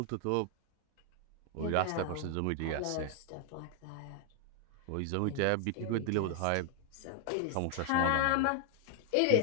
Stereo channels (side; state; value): both; different; correlation 0.00